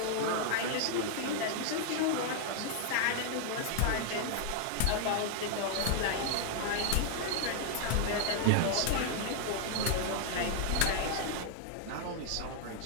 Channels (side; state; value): both; different; correlation -0.01